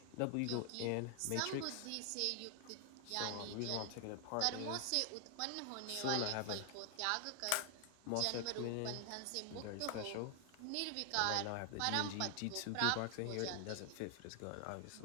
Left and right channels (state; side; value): different; both; correlation 0.00